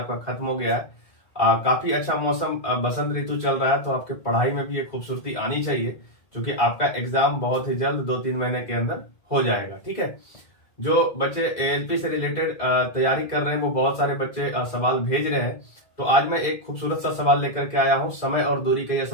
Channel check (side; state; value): right; late; 2.0 ms